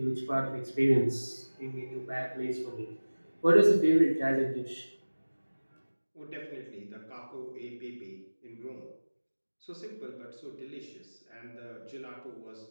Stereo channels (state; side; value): inverted; both; correlation -1.00